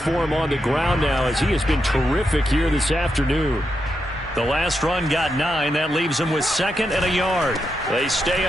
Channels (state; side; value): normal; both; correlation 0.84